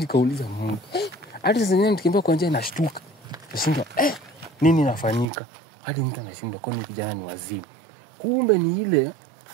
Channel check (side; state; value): left; drops out; at 5.2 s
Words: Mungu, hadi sasa nikimbia kwa njia nashtuka. Nashinda nini nafanyika? Hadi mtu anashinda kwa nini kijana ni wazimu. Kumbe ni ile